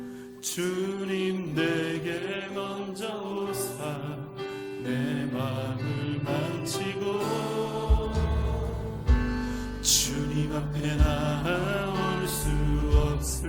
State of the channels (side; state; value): both; identical; correlation 1.00